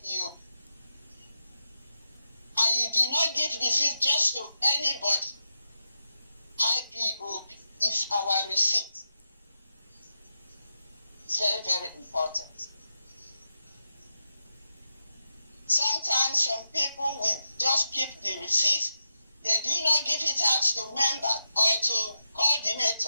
And you do not give receipt just to anybody. IPOB is our receipt. It's very, very important. Sometimes some people will just keep the receipt. They do not give it out to members or to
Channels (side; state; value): both; inverted; correlation -0.87